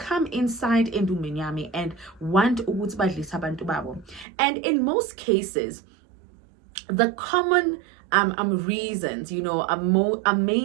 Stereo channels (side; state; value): left; drops out; at 4.2 s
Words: inside endumeni yami and want ukuthi badlisa abantu babo. And in most cases, the common reasons, are